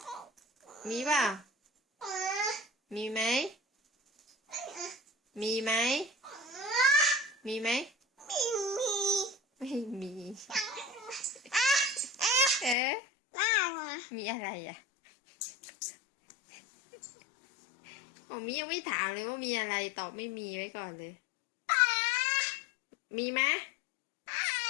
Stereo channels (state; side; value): drops out; right; at 12.8 s